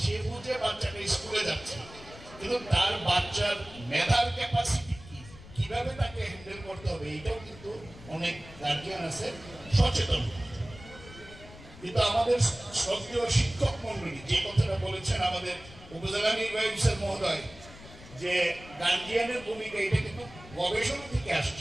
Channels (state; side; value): noise; left; rumble, 18 dB below the sound